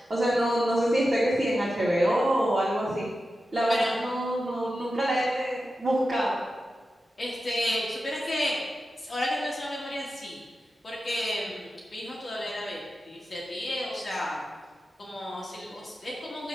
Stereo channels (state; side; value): normal; both; correlation 0.92